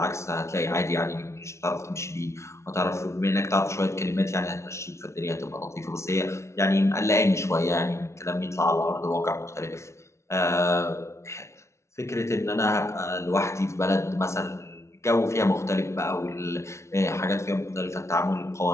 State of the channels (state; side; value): late; right; 0.13 ms